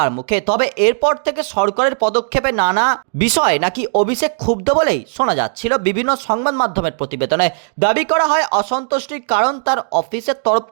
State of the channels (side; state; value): left; silent; digital silence